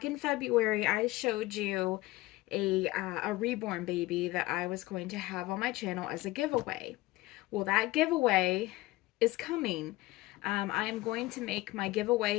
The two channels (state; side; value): quieter; right; 19.1 dB